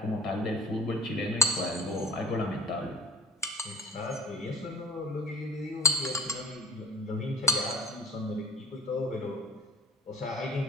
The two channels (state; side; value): normal; both; correlation 0.43